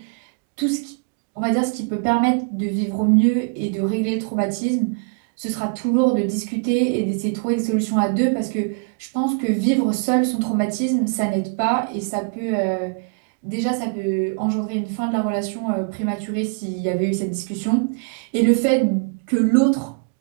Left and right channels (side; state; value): left; quieter; 34.9 dB